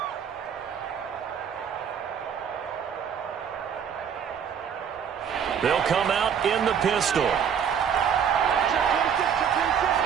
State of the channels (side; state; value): left; quieter; 7.8 dB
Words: They'll come out in the pistol.